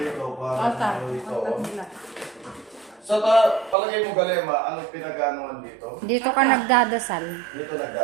para rito. Sa palagay mo Galema, anong pinag-anuan dito? Dito ka nagdadasal. Dito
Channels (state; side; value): drops out; left; at 3.8 s